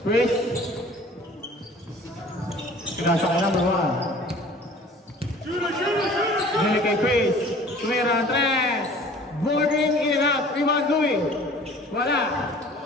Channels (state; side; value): normal; both; correlation 0.48